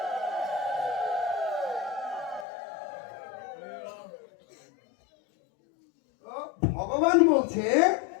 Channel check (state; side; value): drops out; right; at 2.5 s